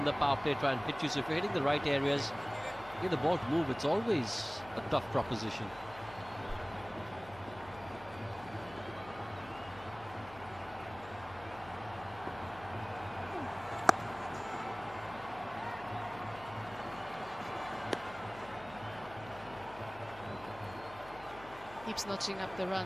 the power play, try and hit you. So if you're hitting the right areas, get the ball to move, it's always a tough proposition. Keeps notching up the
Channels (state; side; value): noise; left; hum, 18 dB below the sound